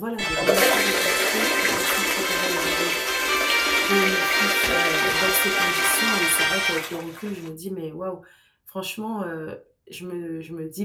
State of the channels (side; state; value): both; identical; correlation 1.00